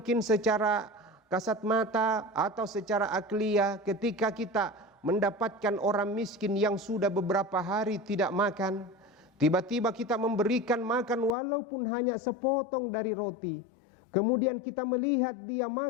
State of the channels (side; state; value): right; drops out; at 11.4 s